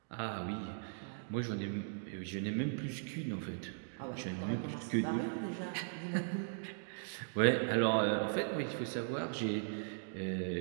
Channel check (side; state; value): left; silent; digital silence